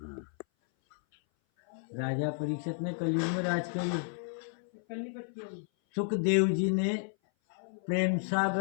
राजा परीक्षित ने कलयुग में राज करी। सुखदेव जी ने प्रेम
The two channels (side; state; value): right; silent; 56 dB below the other